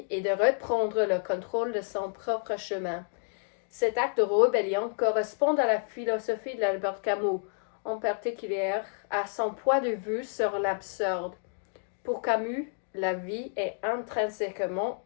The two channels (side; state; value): right; silent; digital silence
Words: et de reprendre le contrôle de son propre chemin. Cet acte de rébellion correspond à la philosophie d'Albert Camus, en particulier à son point de vue sur l'absurde. Pour Camus, la vie est intrinsèquement